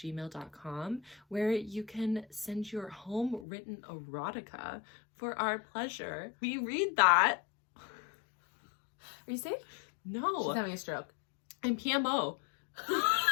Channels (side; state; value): right; drops out; at 3.5 s